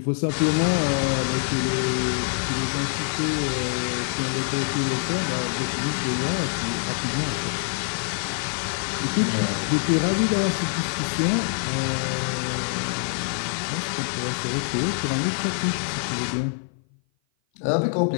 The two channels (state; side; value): silent; right; 56 dB below the other